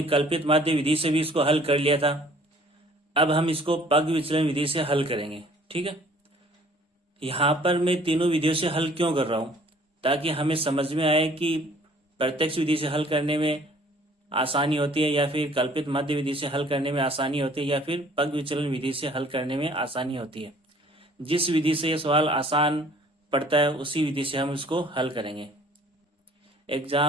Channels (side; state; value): both; normal; correlation 0.55